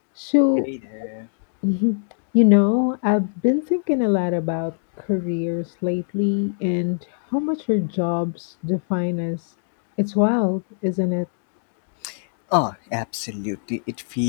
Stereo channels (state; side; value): silent; right; digital silence